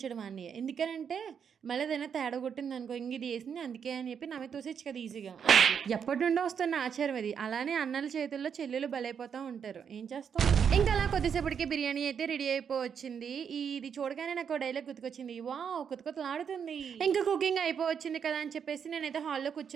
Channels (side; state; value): left; quieter; 7.3 dB